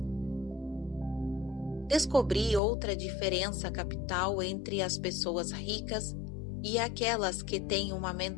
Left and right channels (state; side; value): drops out; right; at 2.6 s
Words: Descobri outra diferença capital entre as pessoas ricas e aquelas que têm uma